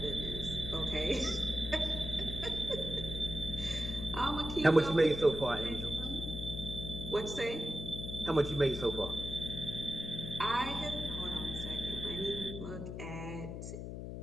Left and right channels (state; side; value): noise; left; hum, 7 dB below the sound